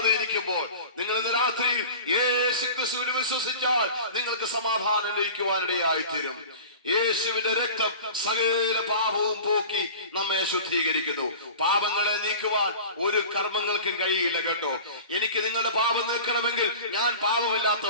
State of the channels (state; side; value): inverted; both; correlation -0.38